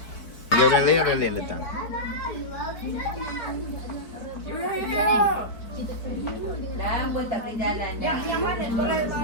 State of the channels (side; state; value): right; late; 4.6 ms